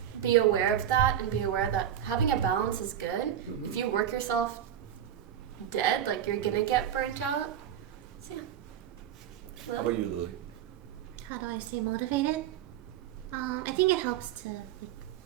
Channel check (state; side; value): quieter; left; 10.3 dB